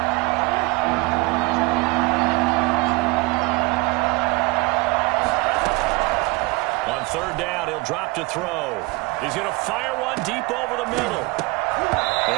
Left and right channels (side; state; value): left; quieter; 24.9 dB